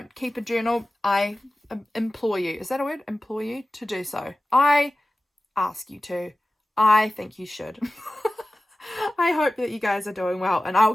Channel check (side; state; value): both; normal; correlation 0.96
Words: keep a journal, I implore you, is that a word? Implore you to do so. I ask you to. I think you should. I hope that you guys are doing well, and